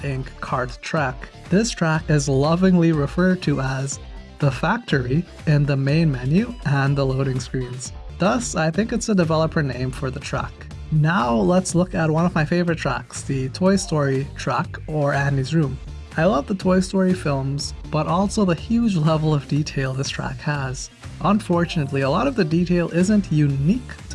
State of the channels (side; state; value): both; identical; correlation 1.00